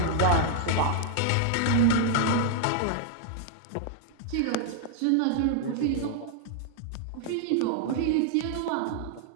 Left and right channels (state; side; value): different; both; correlation 0.00